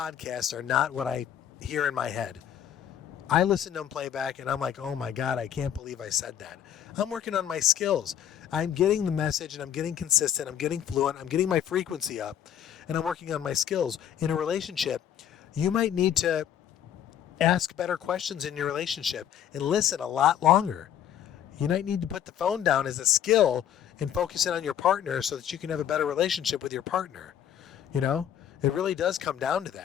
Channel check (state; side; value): quieter; right; 9.8 dB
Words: are not what I hear in my head. I listen to them play back and I'm like, oh my God, I can't believe I said that. I'm working on my skills. I'm getting the message and I'm getting consistent. I'm getting fluent. I'm getting my frequency up and I'm working on my skills. In a relationship, you might need to ask better questions in your relationship and listen a lot longer. You might need to put the phone down as a skill and focus in on your partner so that you can have a better relationship with your partner. You know, it really does come down to